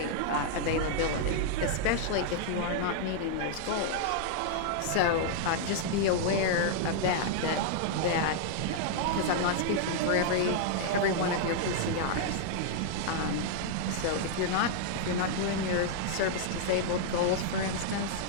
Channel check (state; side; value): different; both; correlation -0.01